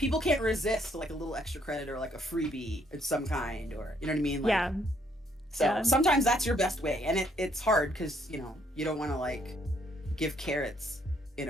can't resist like a little extra credit or like a freebie of some kind, or you know what I mean? Like, yeah. So sometimes that's your best way, and it's hard because you know you don't want to like give carrots in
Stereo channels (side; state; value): both; normal; correlation 0.69